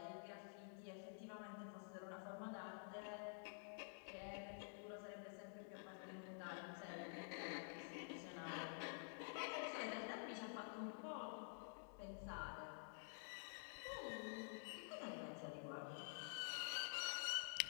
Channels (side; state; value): right; silent; digital silence